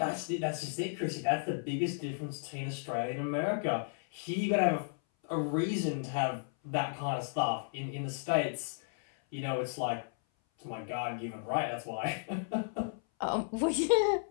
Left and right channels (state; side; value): silent; right; 55 dB below the other